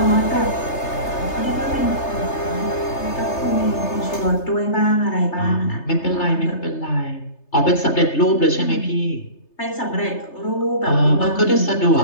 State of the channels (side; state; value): right; late; 3.3 ms